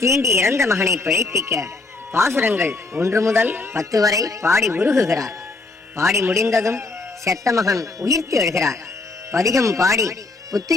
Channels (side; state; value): right; quieter; 3.5 dB